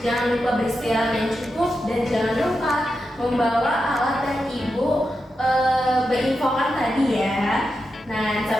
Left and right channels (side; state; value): both; normal; correlation 0.88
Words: Jangan lupa beristirahat yang cukup dan jangan lupa membawa alat yang ibu berinfokan tadi ya. Nah,